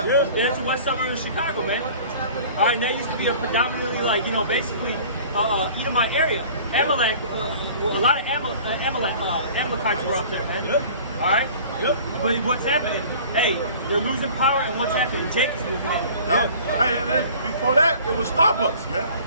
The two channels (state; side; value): inverted; both; correlation -0.46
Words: That's the west suburb of Chicago, man. All right, and that used to be a predominantly, like, you know, basically Edomite area. Amalek, a lot of Amalekites were up there, man. Yep. All right? Yep. But what's happening? Hey, they're losing power, and what's happening? Jake is losing it. Yeah. Hey, and then before that, it was Starbucks, man.